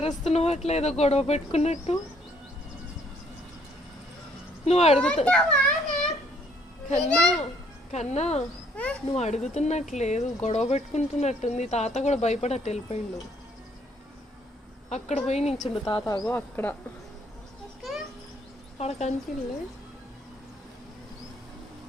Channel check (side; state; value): both; normal; correlation 0.65